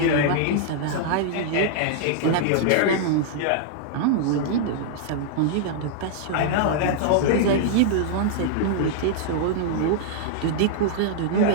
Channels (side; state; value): both; different; correlation -0.01